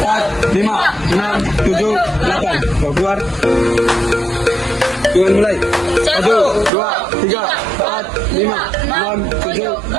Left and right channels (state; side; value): drops out; left; at 6.7 s